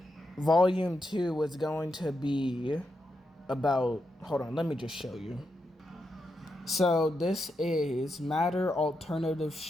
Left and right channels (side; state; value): both; normal; correlation 0.85